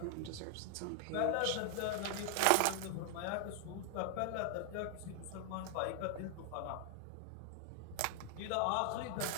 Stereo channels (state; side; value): different; both; correlation 0.00